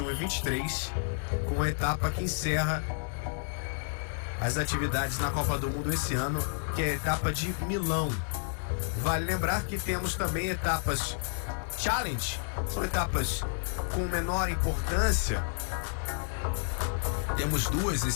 e 23, com a etapa que encerra as atividades na Copa do Mundo esse ano, que é a etapa de Milão. Vale lembrar que temos também etapas Challenge, são etapas com menor importância. Temos 2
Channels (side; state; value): right; silent; 57 dB below the other